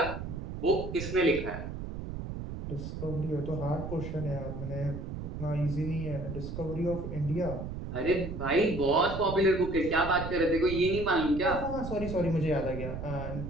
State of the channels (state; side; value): noise; right; rumble, 7 dB below the sound